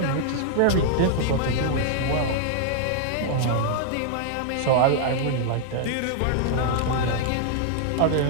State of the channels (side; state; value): both; different; correlation 0.00